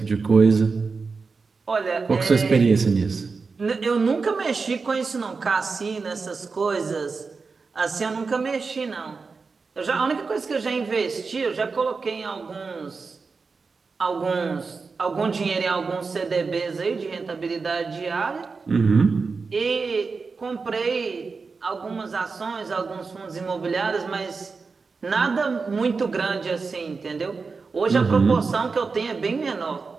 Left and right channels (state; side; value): quieter; left; 4.6 dB